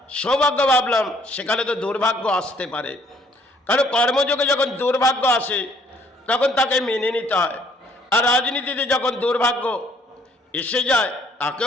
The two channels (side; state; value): both; normal; correlation 0.63